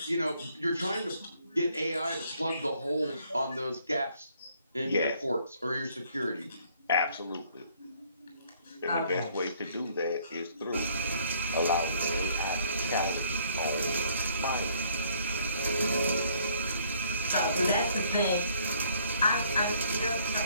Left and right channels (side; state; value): both; inverted; correlation -0.63